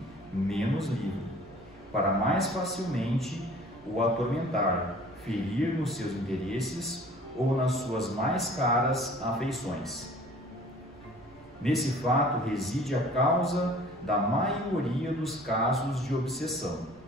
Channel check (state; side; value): noise; right; rumble, 25 dB below the sound